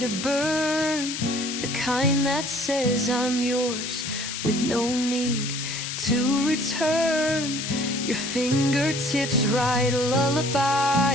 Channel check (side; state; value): left; noise; hiss, 5 dB below the sound